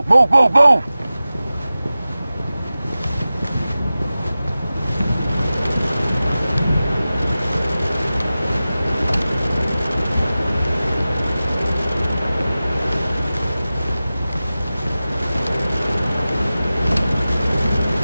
Move, move, move!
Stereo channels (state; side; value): inverted; both; correlation -0.96